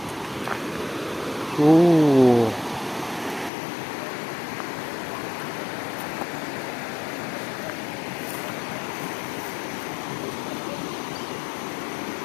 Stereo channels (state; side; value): drops out; right; at 3.5 s